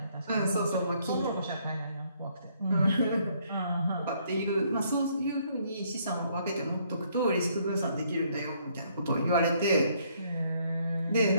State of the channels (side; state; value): both; inverted; correlation -0.68